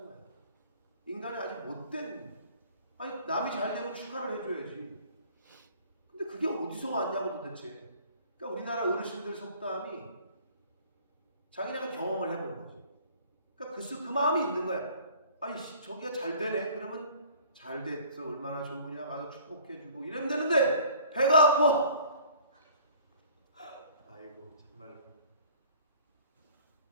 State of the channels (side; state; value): both; inverted; correlation -0.51